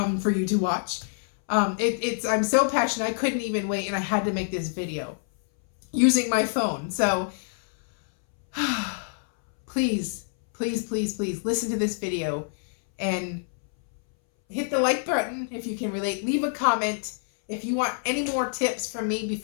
for you to watch. I'm so passionate, I couldn't even wait, and I had to make this video using my phone. So please, please, please, please listen to this video and hit the like button if you can relate. Leave a comment. If you want any more tips from me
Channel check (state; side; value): silent; right; 61 dB below the other